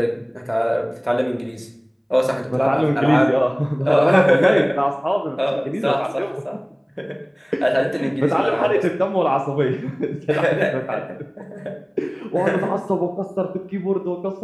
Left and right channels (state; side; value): identical; both; correlation 1.00